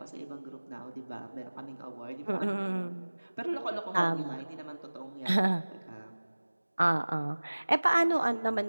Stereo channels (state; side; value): inverted; both; correlation -1.00